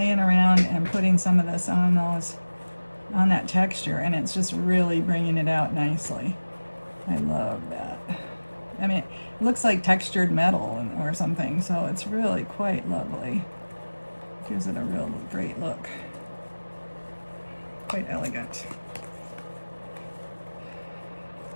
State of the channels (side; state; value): both; inverted; correlation -1.00